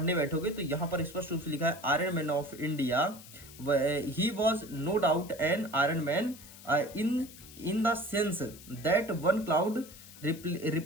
बैठोगे तो यहाँ पर स्पष्ट रूप से लिखा है iron man of India, he was no doubt an iron man in the sense that one cloud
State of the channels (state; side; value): noise; left; hiss, 18 dB below the sound